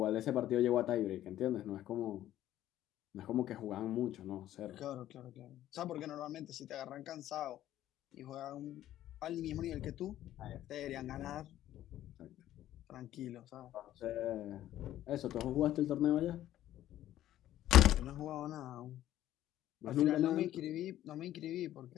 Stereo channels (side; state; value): right; quieter; 13.0 dB